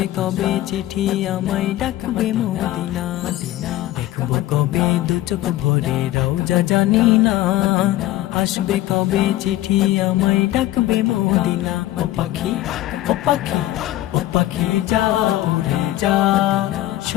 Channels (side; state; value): right; quieter; 15.2 dB